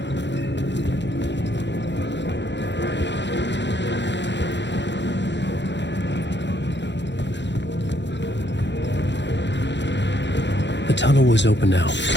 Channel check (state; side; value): late; right; 0.52 ms